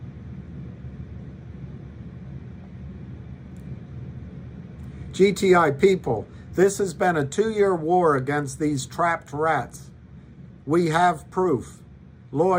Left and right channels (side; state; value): both; identical; correlation 1.00